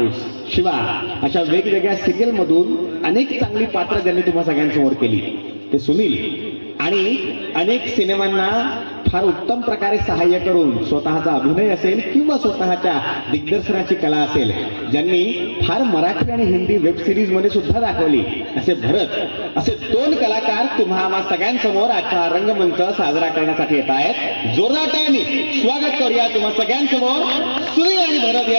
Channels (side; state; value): both; inverted; correlation -1.00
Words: शिवा अशा वेगवेगळ्या सिरियल मधून अनेक चांगली पात्र ज्यांनी तुम्हा सगळ्यांसमोर केली ते सुनील आणि अनेक सिनेमांना फार उत्तम प्रकारे सहाय्य करून स्वतःचा अभिनय असेल किंवा स्वतःच्या दिग्दर्शनाची कला असेल ज्यांनी फार मराठी आणि हिंदी वेब सिरीज मध्ये सुद्धा दाखवली असे भरत असे दोन कलाकार तुम्हा सगळ्यांसमोर आजचा रंगमंच साजरा करण्यासाठी येत आहेत. जोरदार टाळ्यांनी स्वागत करूया तुम्हा सगळ्यांसमोर सुनील आणि भरत